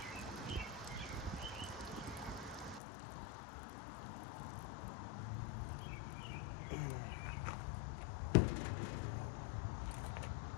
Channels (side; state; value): right; drops out; at 2.8 s